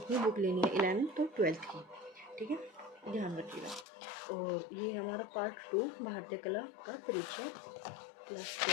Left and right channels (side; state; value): right; drops out; at 3.9 s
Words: ही बुक लेनी है, 11th और 12th की, ठीक है, ध्यान रखिएगा। और ये हमारा पार्ट 2 भारतीय कला का परिचय, क्लास